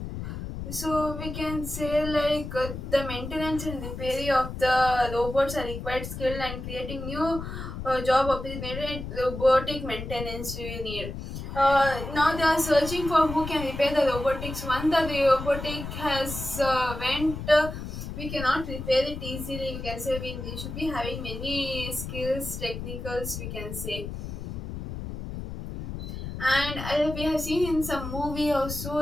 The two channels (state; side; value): noise; left; rumble, 7 dB below the sound